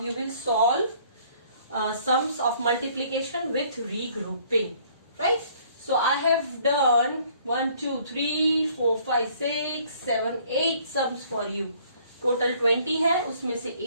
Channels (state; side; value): inverted; both; correlation -0.59